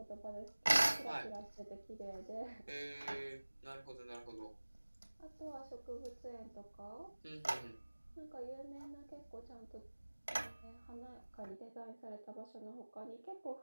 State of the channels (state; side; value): inverted; both; correlation -1.00